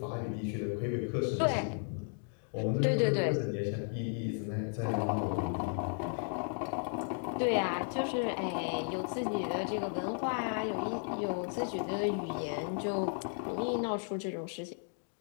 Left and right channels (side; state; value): right; silent; 55 dB below the other